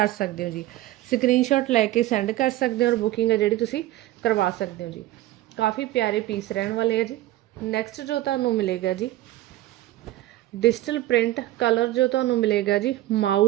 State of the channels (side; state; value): left; quieter; 15.8 dB